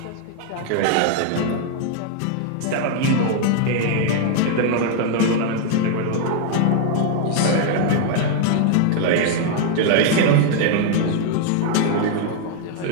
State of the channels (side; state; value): both; different; correlation 0.00